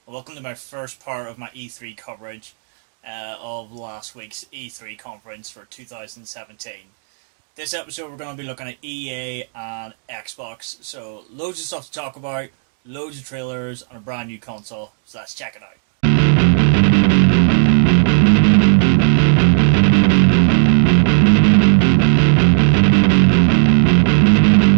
Welcome to my first part of my E3 coverage of last week's E3 conference for 2017. This episode we're going to be looking at EA and Xbox, so loads of stuff to talk about, loads of trailers and a brand new console, so let's check it out.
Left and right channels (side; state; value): left; silent; digital silence